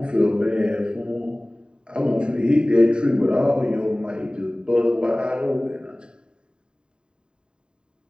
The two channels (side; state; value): left; late; 0.049 ms